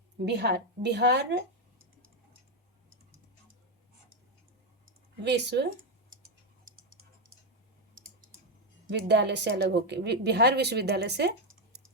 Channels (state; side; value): normal; both; correlation 0.05